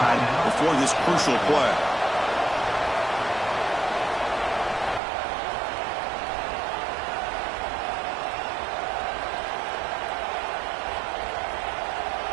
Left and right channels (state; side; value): drops out; left; at 5.0 s